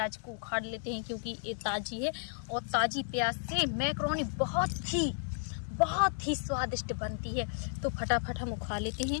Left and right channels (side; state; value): right; silent; digital silence